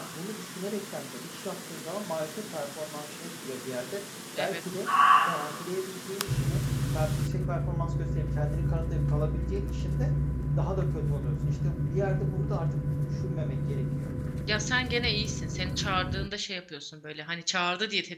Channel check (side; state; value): both; identical; correlation 1.00